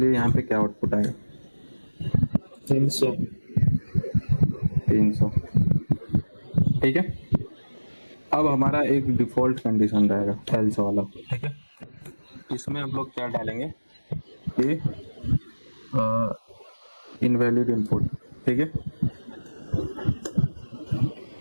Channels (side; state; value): both; inverted; correlation -1.00